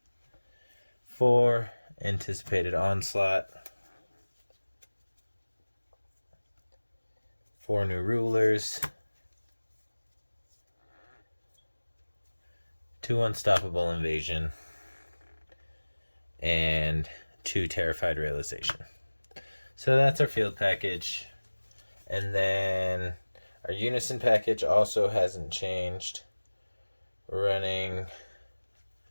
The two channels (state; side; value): inverted; both; correlation -1.00